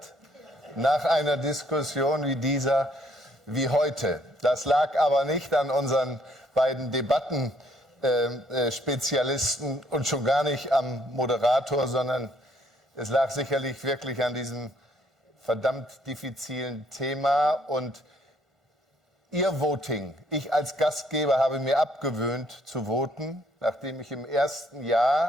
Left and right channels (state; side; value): normal; both; correlation 0.66